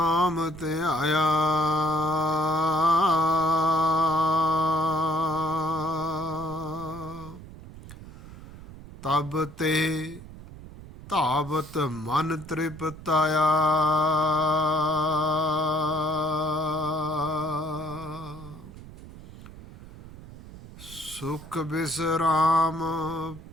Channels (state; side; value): noise; right; rumble, 16 dB below the sound